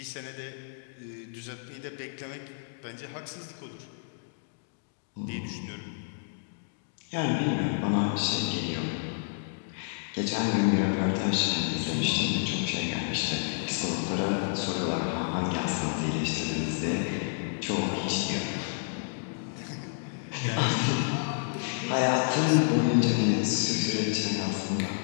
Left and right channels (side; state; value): right; silent; digital silence